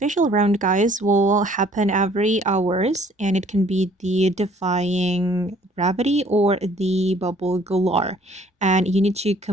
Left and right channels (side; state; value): both; normal; correlation 0.58